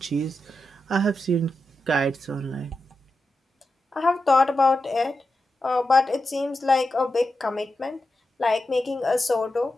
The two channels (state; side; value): normal; both; correlation 0.89